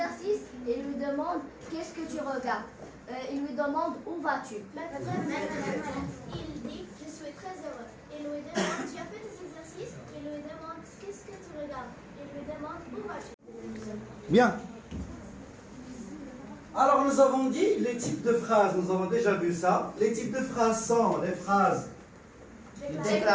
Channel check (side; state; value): both; identical; correlation 1.00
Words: Et il lui demande qu'est-ce que tu regardes. Il lui demande où vas-tu. Il dit je suis très heureux. Il lui demande tu as fait tes exercices. Il lui demande qu'est-ce que tu regardes. Il lui demande où vas-tu. Bien. Alors nous avons dit les types de phrases, nous avons déjà vu ça. Les types de phrases sont les phrases